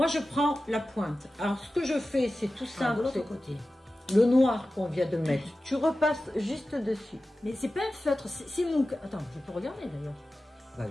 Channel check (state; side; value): normal; both; correlation 0.95